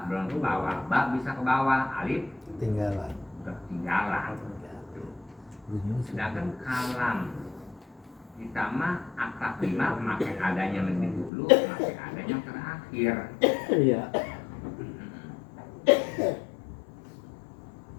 belum ke bawah, ba bisa ke bawah, alif ketinggalan. Sedangkan kalam kita mah akad lima makin adanya lebih dulu, makin adanya terakhir. Iya.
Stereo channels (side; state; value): right; drops out; at 11.3 s